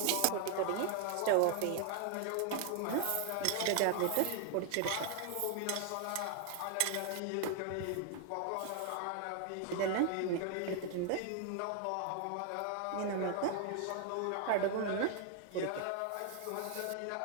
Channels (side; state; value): both; different; correlation 0.00